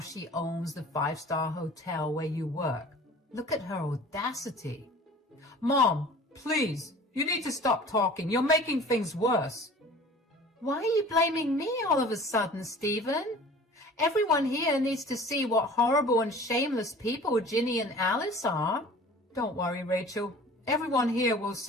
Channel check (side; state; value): both; normal; correlation 0.44